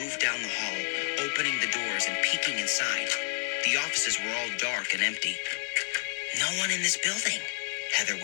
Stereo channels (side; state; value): right; silent; 58 dB below the other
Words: down the hall, opening the doors and peeking inside. The offices were all dark and empty. "No one in this building," Heather